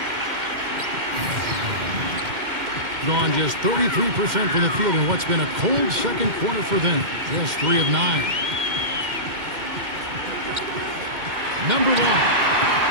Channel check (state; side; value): late; left; 2.1 ms